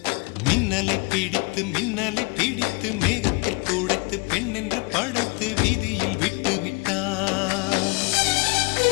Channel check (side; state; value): right; quieter; 28.9 dB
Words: மின்னலை பிடித்து மேகத்தில் துடைத்து பெண் என்று படைத்து வீதியில் விட்டு விட்டான்.